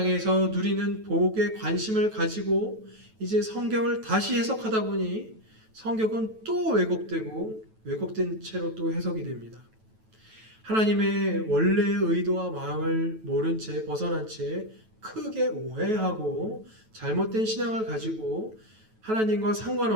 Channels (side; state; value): left; late; 9.2 ms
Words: 누리는 복에 관심을 가지고 이제 성경을 다시 해석하다 보니 성경은 또 왜곡되고 왜곡된 채로 또 해석이 됩니다. 하나님의 원래의 의도와 마음을 모른 채 벗어난 채 크게 오해하고 잘못된 신앙을 가지고 하나님과